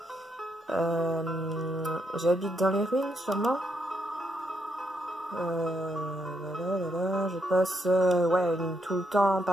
J'habite dans les ruines, sûrement. Je passe tout le temps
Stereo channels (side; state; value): both; normal; correlation 0.78